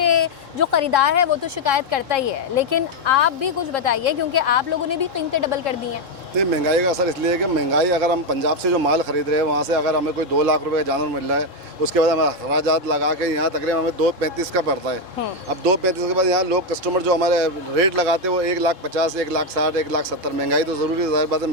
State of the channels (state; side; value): late; left; 3.7 ms